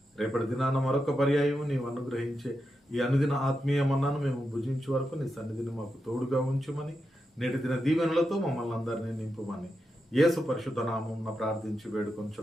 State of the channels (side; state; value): both; normal; correlation 0.87